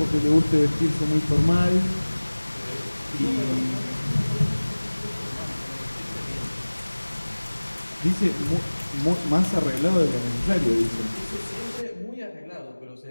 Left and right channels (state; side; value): inverted; both; correlation -1.00